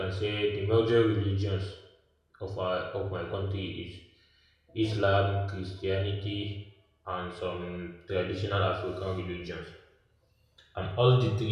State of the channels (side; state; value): both; identical; correlation 1.00